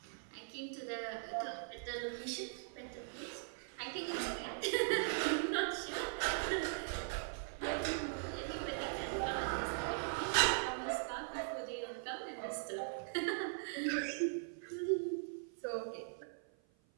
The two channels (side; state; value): left; silent; 51 dB below the other